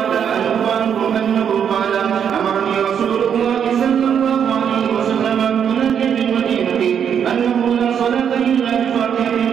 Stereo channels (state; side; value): quieter; left; 8.1 dB